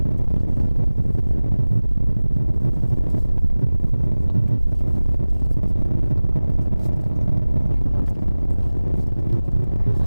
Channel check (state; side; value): inverted; both; correlation -0.98